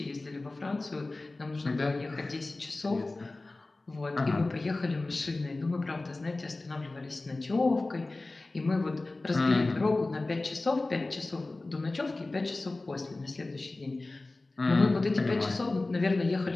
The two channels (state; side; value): quieter; right; 3.1 dB